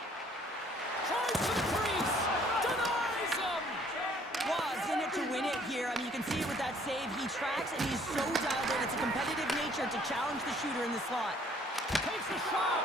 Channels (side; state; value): both; normal; correlation 0.60